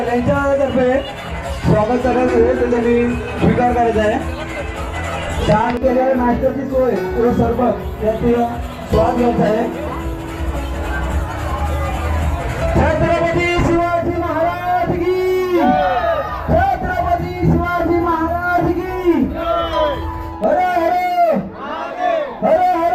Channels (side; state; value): both; identical; correlation 1.00